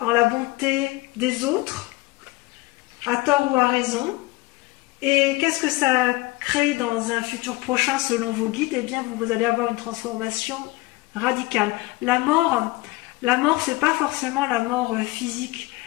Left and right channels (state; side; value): quieter; right; 20.9 dB